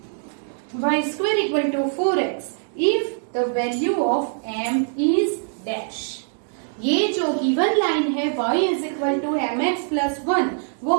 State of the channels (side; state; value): left; silent; digital silence